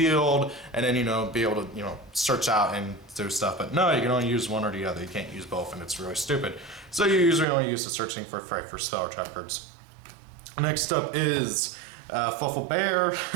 and then be able to search out and do stuff. But no, you can only use one or the other. You can't use both, and it's really stupid. So you usually only use the searching for spell or trap cards. Next up is Fluffal Bear,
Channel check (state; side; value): drops out; left; at 7.5 s